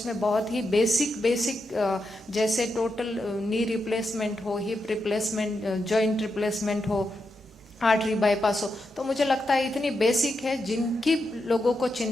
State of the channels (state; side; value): normal; both; correlation 0.85